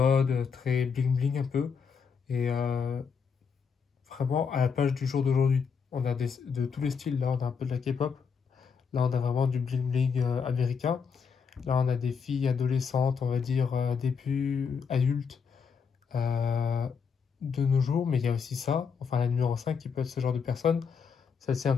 très bling bling un peu. Et vraiment à la page du jour d'aujourd'hui. On a de tous les styles. Là, on a un peu de la K-pop. Là, on a vraiment du bling bling américain. Là, on a des filles adolescentes, on va dire début adultes euh, de nos jours. Mais il y a aussi ça, enfin la numéro 5 qui peut être ce genre de personne. Celle-ci un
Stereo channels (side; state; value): right; quieter; 6.1 dB